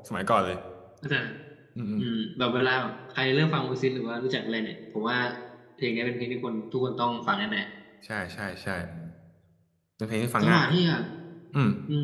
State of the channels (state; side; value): identical; both; correlation 1.00